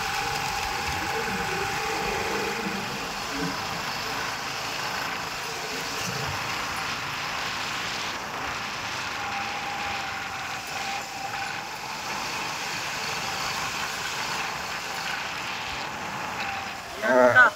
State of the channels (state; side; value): identical; both; correlation 1.00